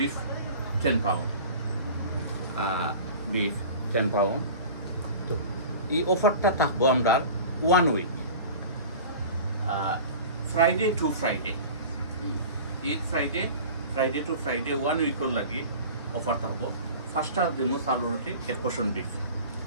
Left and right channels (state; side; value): inverted; both; correlation -0.38